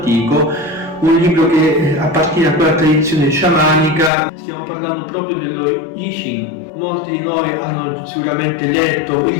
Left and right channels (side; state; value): right; drops out; at 4.1 s